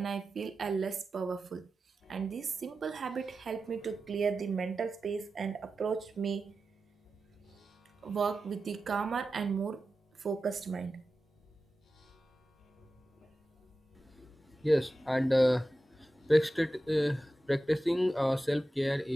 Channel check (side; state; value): both; normal; correlation 0.93